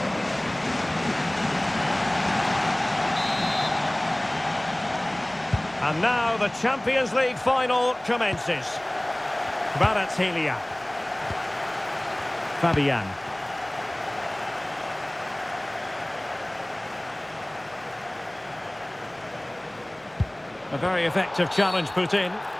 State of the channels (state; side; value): noise; left; hum, 30 dB below the sound